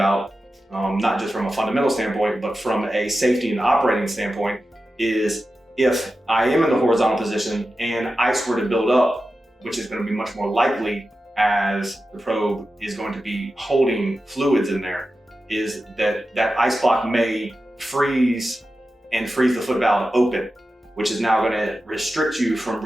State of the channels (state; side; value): normal; both; correlation 0.92